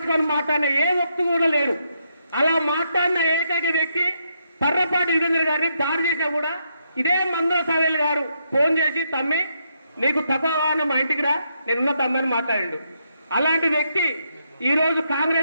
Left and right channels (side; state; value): both; inverted; correlation -0.79